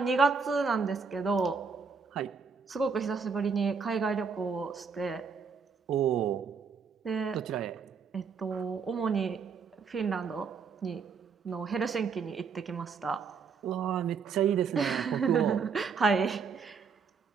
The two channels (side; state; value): left; quieter; 5.6 dB